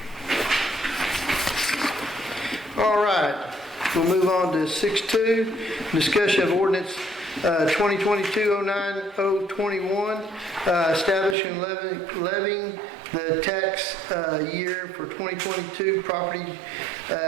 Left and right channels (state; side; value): drops out; left; at 11.4 s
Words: All right, we'll move on to 6.2, discussion of ordinance 2022-09-021, establishing levying the tax year for 2022 property